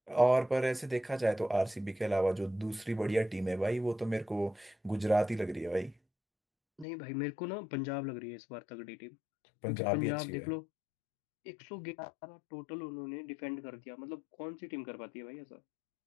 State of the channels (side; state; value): right; drops out; at 6.9 s